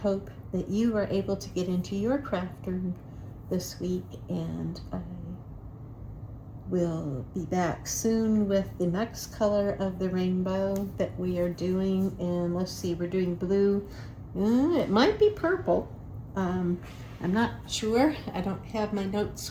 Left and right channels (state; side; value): identical; both; correlation 1.00